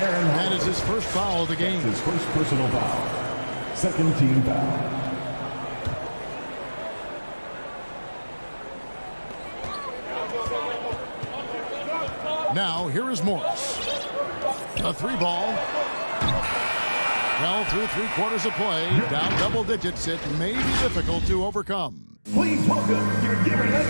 is his first foul of the game. His first personal foul. Second team foul. Now, here is Morris. A 3-ball. Well, through 3 quarters of play, down double digits, it may be difficult to overcome. Please welcome your Denver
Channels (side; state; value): both; inverted; correlation -1.00